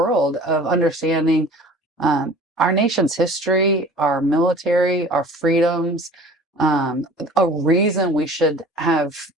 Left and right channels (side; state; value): both; normal; correlation 0.45